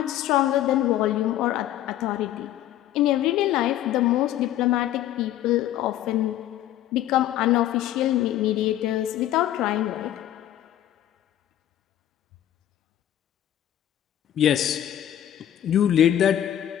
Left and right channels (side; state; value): right; quieter; 12.2 dB